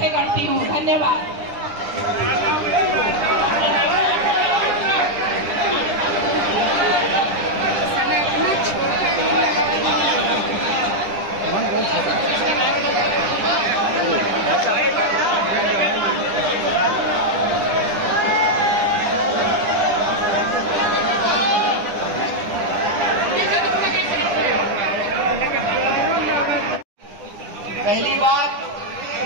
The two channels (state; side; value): late; left; 10 ms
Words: करती हूँ। धन्यवाद। पहली बात